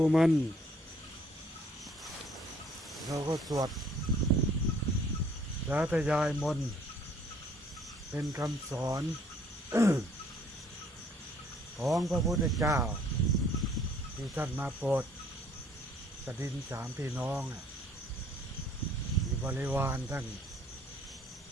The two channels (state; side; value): normal; both; correlation 0.60